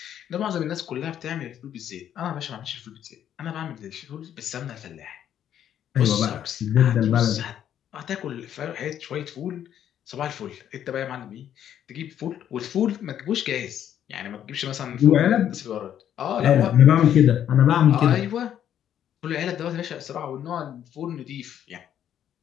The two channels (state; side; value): quieter; right; 10.1 dB